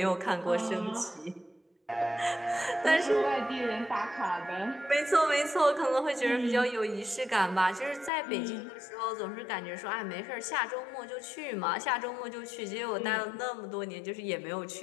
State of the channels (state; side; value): drops out; right; at 8.1 s